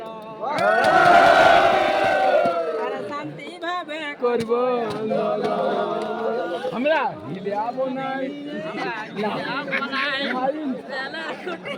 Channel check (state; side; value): identical; both; correlation 1.00